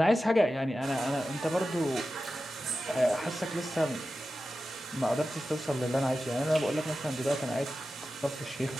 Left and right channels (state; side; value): normal; both; correlation 0.93